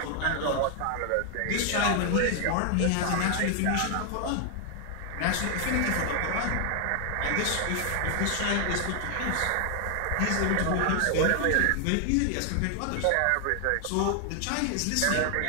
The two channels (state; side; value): different; both; correlation 0.00